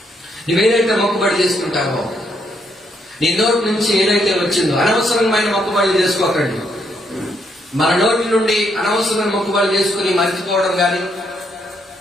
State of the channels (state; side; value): normal; both; correlation 0.75